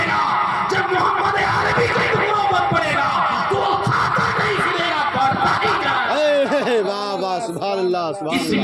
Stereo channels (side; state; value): both; identical; correlation 1.00